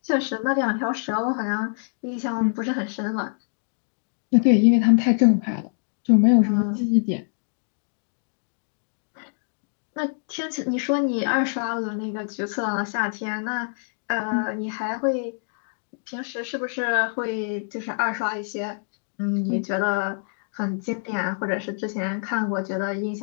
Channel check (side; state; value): right; silent; digital silence